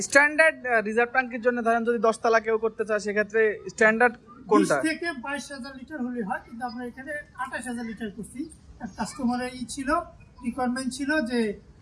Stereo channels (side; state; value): both; identical; correlation 1.00